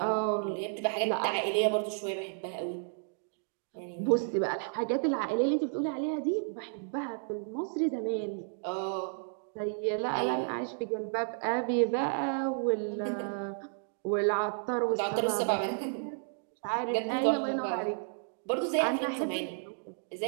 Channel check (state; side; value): silent; left; digital silence